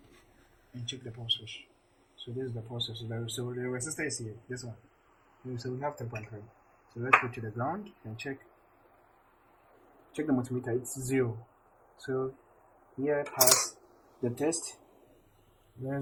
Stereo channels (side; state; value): both; identical; correlation 1.00